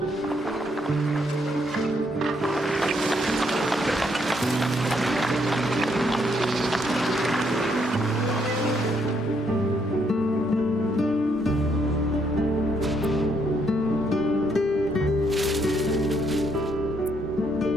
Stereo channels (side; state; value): both; normal; correlation 0.73